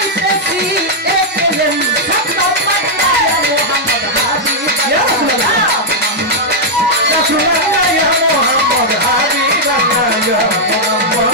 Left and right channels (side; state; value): both; normal; correlation -0.03